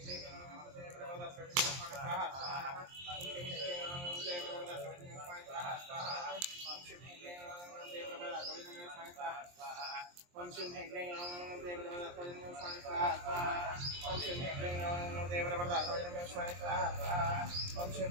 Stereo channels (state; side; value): late; left; 23 ms